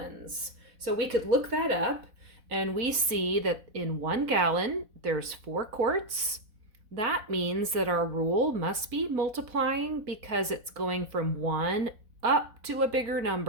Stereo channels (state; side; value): late; left; 4.1 ms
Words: So we could look that up, and we see that in 1 gallon, there's 4 quarts. That means that our rule must be multiplying because it's going from 1 up to a bigger